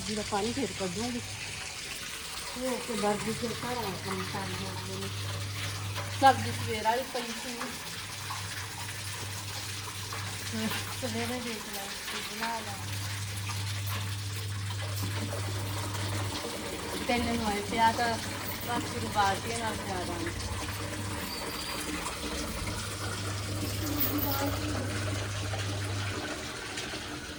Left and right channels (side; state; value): both; identical; correlation 1.00